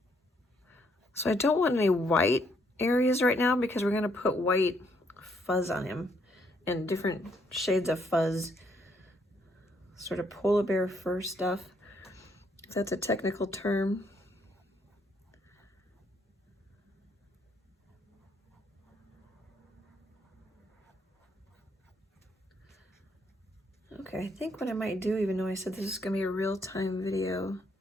So I don't want any white areas right now because we're gonna put white fuzz on him and different shades of fuzz. Sort of polar bear fur stuff, if that's a technical term. Okay, I think what I might do, even though I said this is gonna be a real-time video,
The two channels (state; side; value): normal; both; correlation 0.71